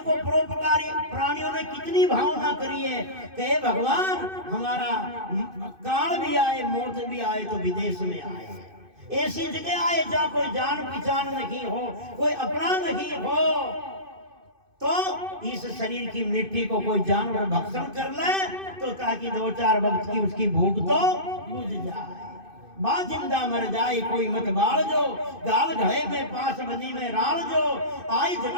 परोपकारी प्राणियों ने कितनी भावना करी है कि भगवान हमारा काल भी आए, मौत भी आए तो विदेश में आए, ऐसी जगह आए जहाँ कोई जान पहचान नहीं हो, कोई अपना नहीं हो, तो इस शरीर की मिट्टी को कोई जानवर भक्षण कर ले तो ताकि 2-4 वक्त की उसकी भूख तो बुझ जाए। बा जिंदा मर जाए कोई मत बाल जो, गाल घड़े में पास बनी में राल जो, आई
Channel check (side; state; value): left; late; 2.6 ms